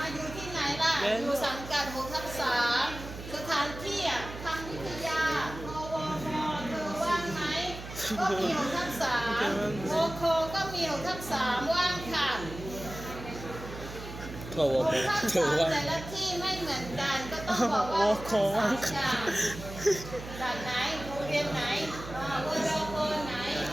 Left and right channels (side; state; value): right; noise; hum, 12 dB below the sound